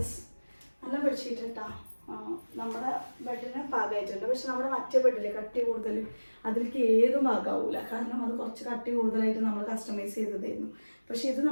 നല്ല ബെഡ്ഷീറ്റ് കേട്ടോ. നമ്മുടെ ബെഡിന് പാകമായിട്ടുണ്ട്. പക്ഷെ നമ്മുടെ മറ്റേ ബെഡില് കട്ടി കൂടുതൽ, അതിലേക്ക് ഏതും പാകാവൂല. കാരണം അത് കുറച്ച് കട്ടി കൂടുതലായിട്ട് നമ്മൾ കസ്റ്റമൈസ് ചെയ്തതായിരുന്നു. പക്ഷെ ഇത്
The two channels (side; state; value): both; inverted; correlation -1.00